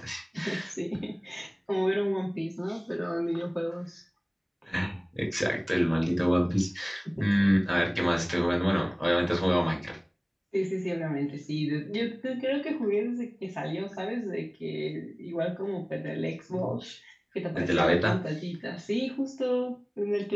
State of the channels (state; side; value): identical; both; correlation 1.00